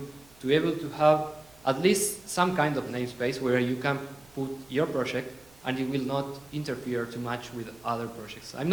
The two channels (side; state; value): right; noise; hum, 28 dB below the sound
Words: to be able to have at least some kind of namespace where you can put your project and it will not interfere too much with other projects. I'm